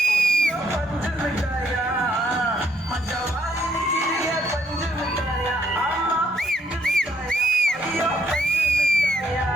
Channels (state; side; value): normal; both; correlation 0.71